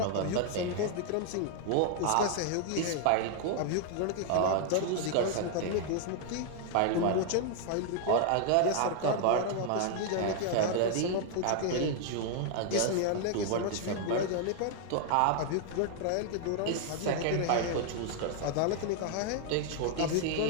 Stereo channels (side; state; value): both; different; correlation 0.00